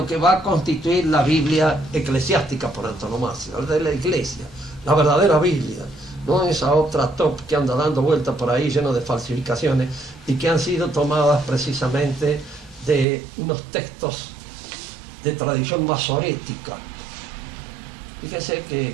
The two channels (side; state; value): left; drops out; at 13.1 s